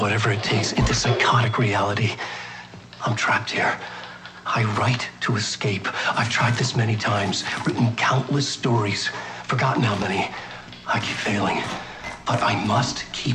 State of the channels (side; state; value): both; identical; correlation 1.00